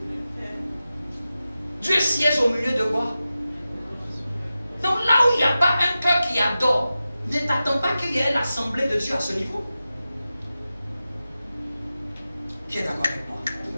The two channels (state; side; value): inverted; both; correlation -0.93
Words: Dieu siège au milieu de quoi? Donc là où il n'y a pas un cœur qui adore, ne t'attends pas qu'il y ait l'assemblée de Dieu à ce niveau. Qui est d'accord avec moi?